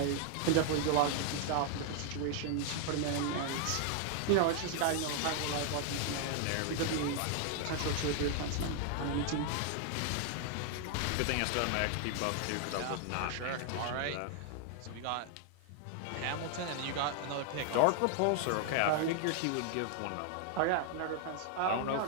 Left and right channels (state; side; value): different; both; correlation 0.00